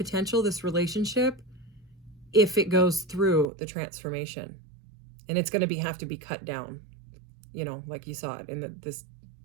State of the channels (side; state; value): left; drops out; at 3.5 s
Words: this relationship, if it goes through the transformation. And it's going to have to be cut down, you know, like you saw it in this